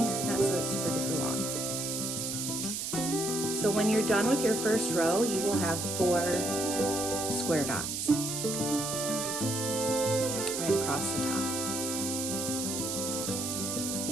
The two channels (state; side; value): noise; right; hiss, 3 dB below the sound